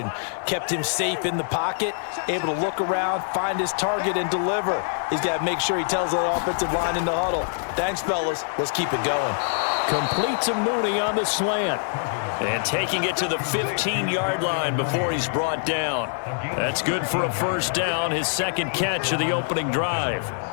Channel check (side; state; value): right; silent; digital silence